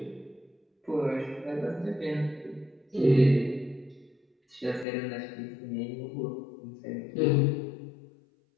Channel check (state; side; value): drops out; right; at 4.9 s